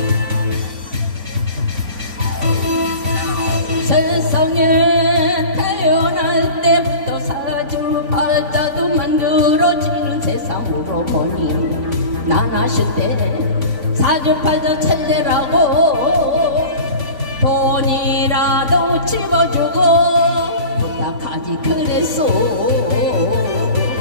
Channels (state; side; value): late; left; 3.5 ms